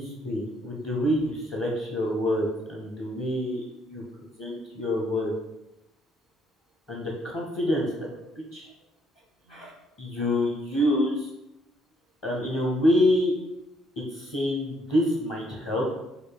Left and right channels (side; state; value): both; normal; correlation 0.70